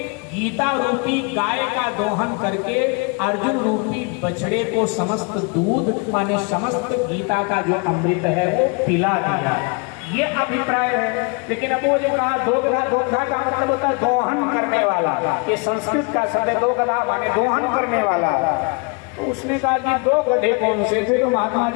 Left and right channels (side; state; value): right; quieter; 32.3 dB